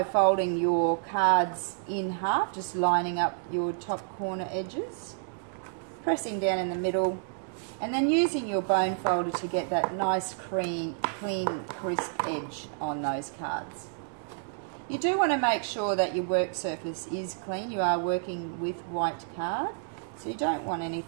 folding your cards in half, just lining up your top corner edges, pressing down in the middle, and then using your bone folder to get that nice clean, crisp edge on those cards. You do want to make sure that your work surface is clean. You are working with white card, so you don't want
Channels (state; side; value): silent; left; digital silence